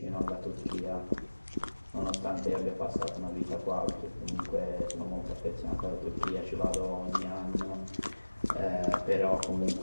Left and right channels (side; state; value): both; inverted; correlation -1.00